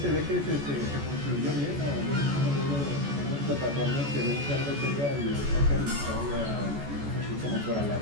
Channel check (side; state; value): left; late; 14 ms